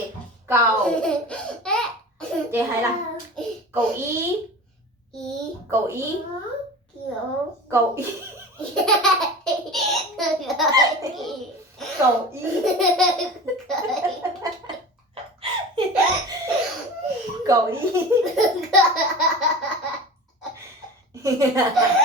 cầu. Chị hay là cầu ý. Cầu ý. Cầu ý. Cầu ý. Cầu ý.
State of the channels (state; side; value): normal; both; correlation 0.34